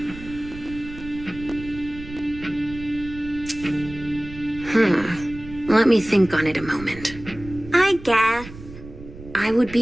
Let me think on it a moment. I guess. I would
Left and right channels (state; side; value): noise; right; rumble, 15 dB below the sound